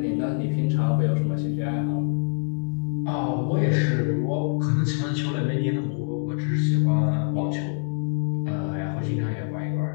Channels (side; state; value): right; silent; 62 dB below the other